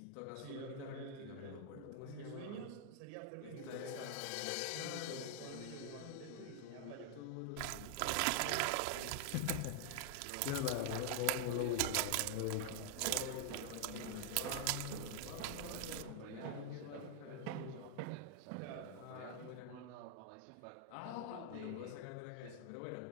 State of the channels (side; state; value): both; different; correlation 0.00